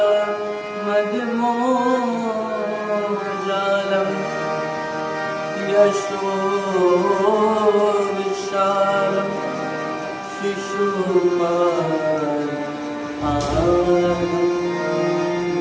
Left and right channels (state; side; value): identical; both; correlation 1.00